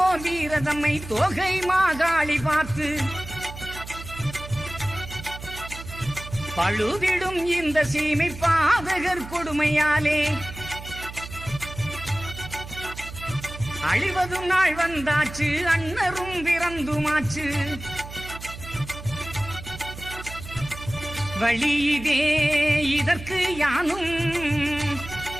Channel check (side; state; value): right; noise; hum, 12 dB below the sound